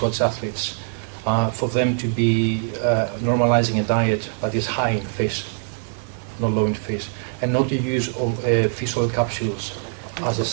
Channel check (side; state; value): left; silent; 64 dB below the other